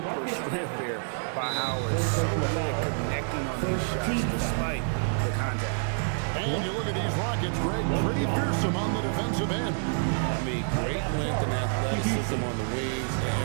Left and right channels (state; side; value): silent; left; digital silence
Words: strength there by Howard. So good at connecting on these shots despite the contact. And you look at these Rockets, Greg, pretty fearsome on the defensive end. I mean, great length and athleticism on the wings